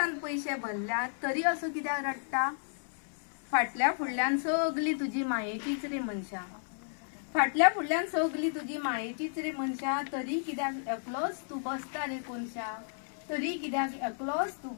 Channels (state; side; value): silent; right; 56 dB below the other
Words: पैसे भरल्या तरी असो कित्याक रडटा, फाटल्या फुडल्यान सगली तुजी मायेचीच रे मनशा, फाटल्या फुडल्यान सगली तुजी मायेचीच रे मनशा, तरी कित्याक एकलोच तू बसता रे कोनशा, तरी कित्याक एकलोच तू